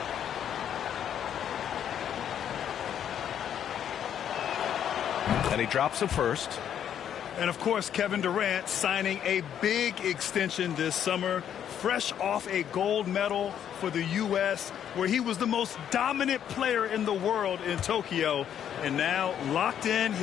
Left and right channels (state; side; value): quieter; right; 9.5 dB